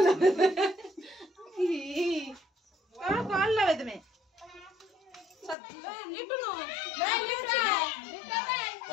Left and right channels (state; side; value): drops out; right; at 5.6 s